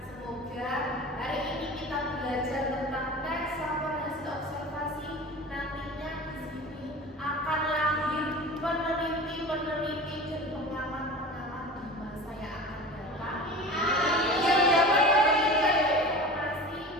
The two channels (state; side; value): normal; both; correlation 0.35